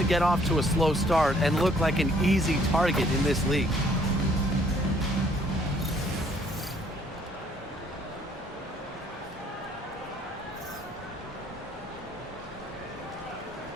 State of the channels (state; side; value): normal; both; correlation 0.63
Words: get off to a slow start and look like an easy target in this league.